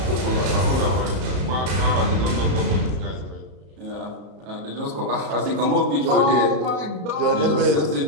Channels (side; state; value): left; late; 34 ms